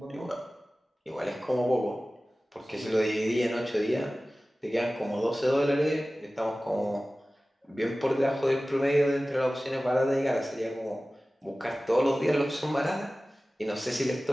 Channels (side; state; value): both; normal; correlation 0.97